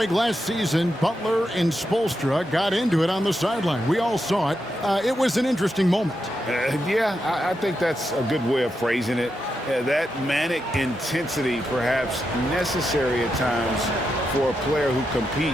last season, Butler and Spoelstra got into it on the sideline. We all saw it. It was an interesting moment. Yeah, I think that's a good way of phrasing it. Yeah, that manic intensity perhaps necessary at times for a player who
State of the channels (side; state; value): both; normal; correlation 0.85